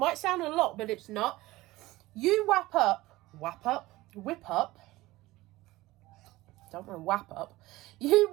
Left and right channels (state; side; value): quieter; left; 18.6 dB